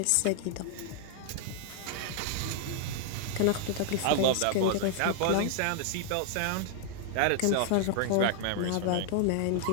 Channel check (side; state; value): both; different; correlation -0.01